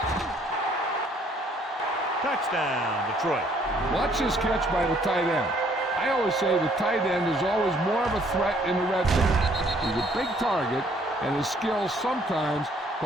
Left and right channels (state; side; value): normal; both; correlation 0.63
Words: Touchdown, Detroit. Watch this catch by the tight end. I always say the tight end is always more of a threat in the red zone. He's a big target, and his skills sometimes